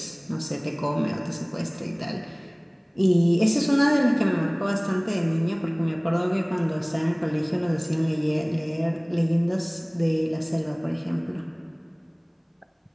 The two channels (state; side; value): identical; both; correlation 1.00